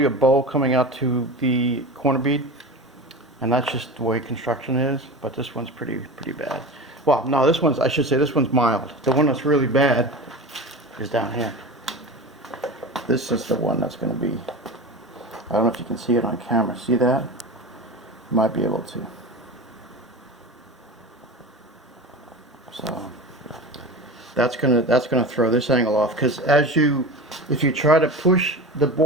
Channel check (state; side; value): normal; both; correlation 0.29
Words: a bow coming out to the corner bead, and that's just the way construction is. But this one's pretty bad. Well, no, I should say this one's mild. The one that's really bad is down here. This is the one that's going to be. I don't know if you can see it on camera. See that? You might be able to. So that's gonna throw this angle off because if you try to push the